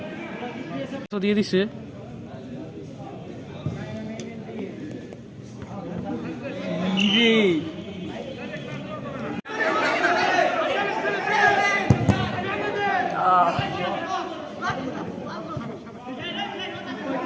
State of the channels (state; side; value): identical; both; correlation 1.00